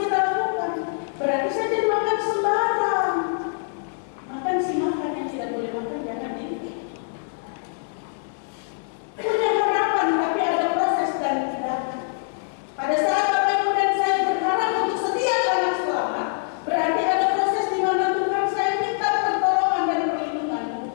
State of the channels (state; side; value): silent; right; digital silence